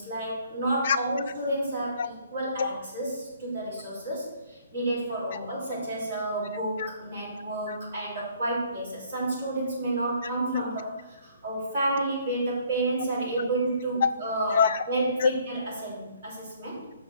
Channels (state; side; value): inverted; both; correlation -0.61